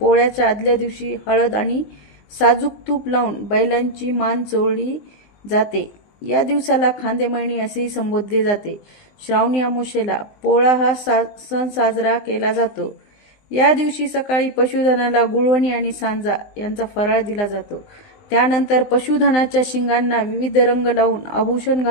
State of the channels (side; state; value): right; late; 19 ms